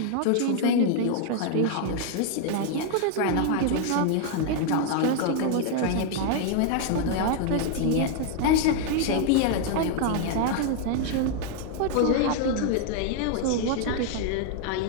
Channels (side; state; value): both; different; correlation 0.00